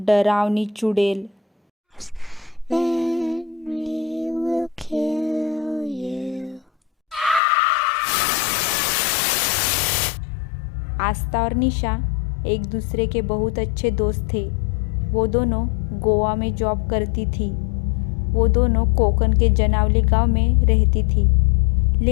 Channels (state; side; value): drops out; right; at 7.4 s